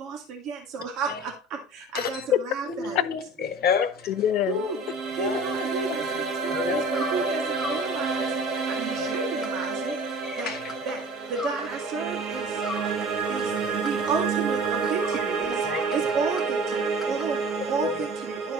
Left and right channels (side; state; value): both; normal; correlation 0.42